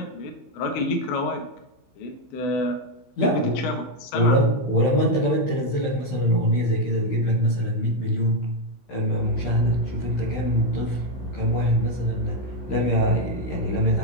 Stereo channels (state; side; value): late; right; 15 ms